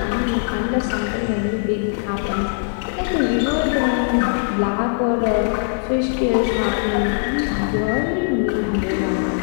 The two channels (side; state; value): right; silent; 65 dB below the other